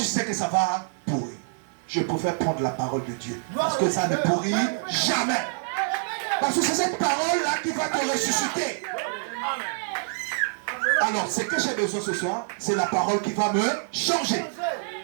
sais que ça va pourrir. je préfère prendre la parole de Dieu. Parce que ça ne pourrit jamais. Parce que c'est cette parole-là qui va te ressusciter. Alors, ce que j'ai besoin ce soir, c'est la parole qui va me changer.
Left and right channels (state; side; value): silent; left; 61 dB below the other